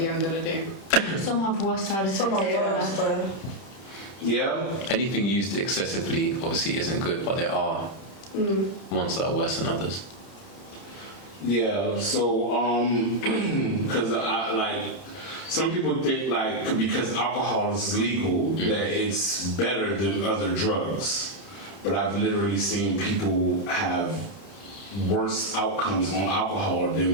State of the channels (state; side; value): late; right; 31 ms